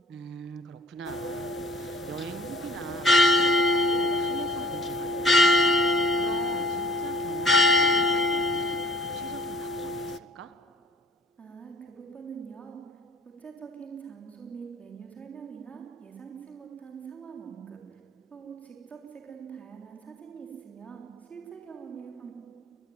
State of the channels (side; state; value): both; normal; correlation 0.52